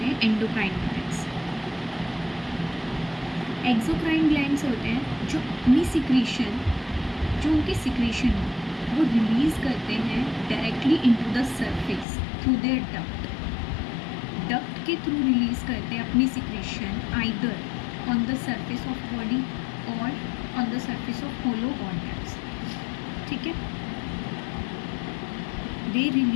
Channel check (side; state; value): right; drops out; at 12.1 s